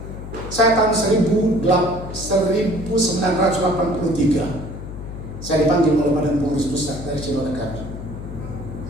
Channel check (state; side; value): noise; left; hum, 10 dB below the sound